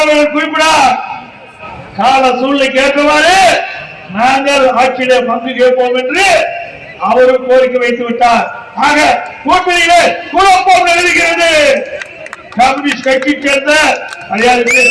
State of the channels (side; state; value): both; identical; correlation 1.00